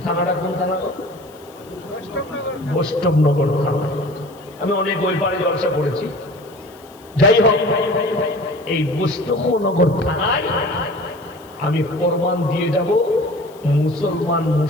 থানাটা কোন থানা? বৈষ্ণবনগর থানা। আমি অনেক ওই পারে জলসা করেছি। যাই হোক, এই বৈষ্ণবনগর থানায় আমি প্রমাণ দিয়ে যাব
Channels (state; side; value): noise; left; hiss, 27 dB below the sound